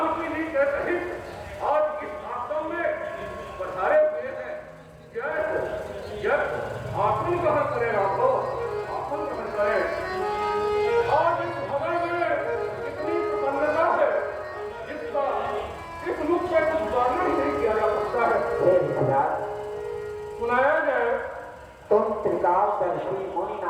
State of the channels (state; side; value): identical; both; correlation 1.00